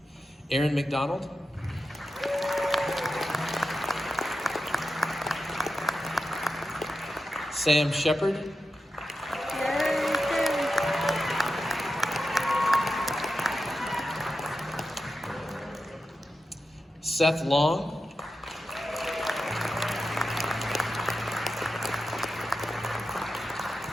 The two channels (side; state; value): both; normal; correlation 0.90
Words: Aaron McDonald. Sam Shepard. Seth Long.